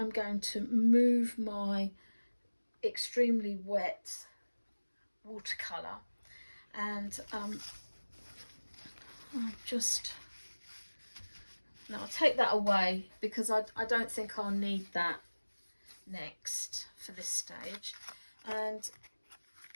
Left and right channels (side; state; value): both; inverted; correlation -1.00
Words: going to move my extremely wet watercolour, and I'll take that away, because I don't think I'll need that next for this stage. And